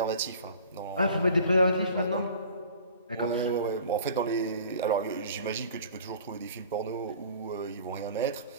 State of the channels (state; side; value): inverted; both; correlation -0.46